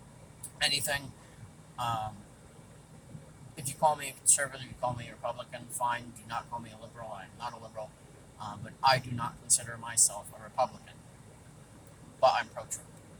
anything. Um, if you call me a conservative, you call me a Republican, fine. Do not call me a liberal. I'm not a liberal. But I do not consider myself a Republican. But I'm pro-Trump.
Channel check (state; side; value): identical; both; correlation 1.00